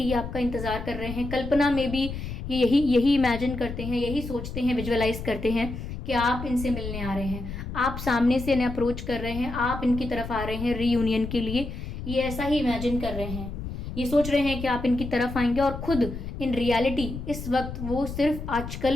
ये आपका इंतज़ार कर रहे हैं, कल्पना में भी ये यही इमेजिन करते हैं, यही सोचते हैं, विजुअलाइज करते हैं कि आप इनसे मिलने आ रहे हैं, आप सामने से इन्हें अप्रोच कर रहे हैं, आप इनकी तरफ आ रहे हैं रीयूनियन के लिए। ये ऐसा ही इमेजिन कर रहे हैं, ये सोच रहे हैं कि आप इनकी तरफ आएंगे, और खुद इन रियलिटी इस वक्त वो सिर्फ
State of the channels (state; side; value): noise; left; rumble, 8 dB below the sound